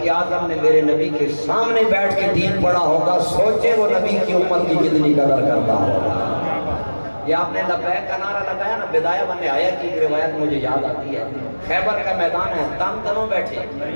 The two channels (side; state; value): both; inverted; correlation -1.00